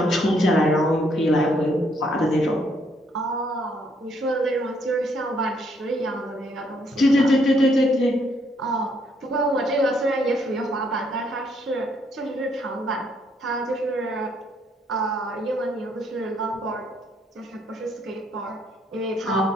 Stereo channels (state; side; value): normal; both; correlation 0.70